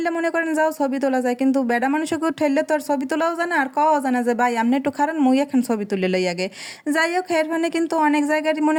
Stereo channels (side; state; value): both; identical; correlation 1.00